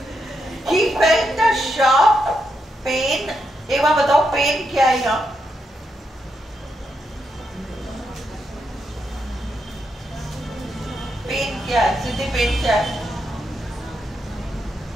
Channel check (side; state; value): both; normal; correlation 0.82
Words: He felt a sharp pain. एक बार बताओ पेन क्या है यहाँ? पेन क्या है? सिद्धि पेन क्या है?